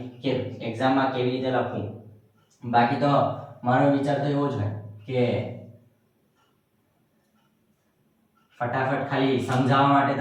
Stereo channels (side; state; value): both; identical; correlation 1.00